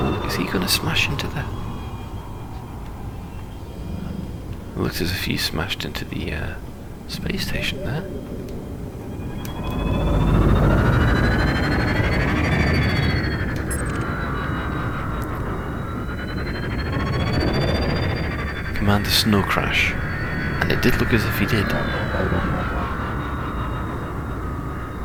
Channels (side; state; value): both; identical; correlation 1.00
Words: Is he going to smash into that? It looks as if he smashed into the space station there. Command a snow crash, and it did look as if he did.